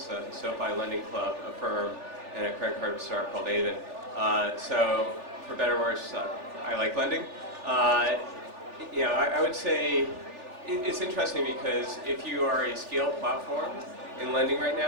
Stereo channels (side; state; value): left; late; 3.4 ms